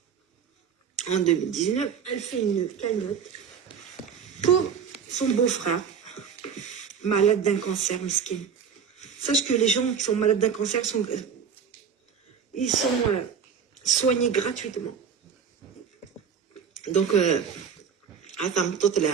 En 2019, elle fait une cagnotte pour son beau-frère, malade d'un cancer, mesquin. Sache que les gens qui sont malades d'un cancer ils sont soignés gratuitement. Donc,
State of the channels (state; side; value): quieter; left; 6.9 dB